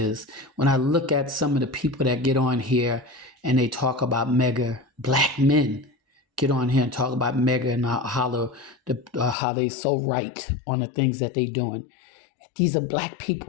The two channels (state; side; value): drops out; right; at 9.3 s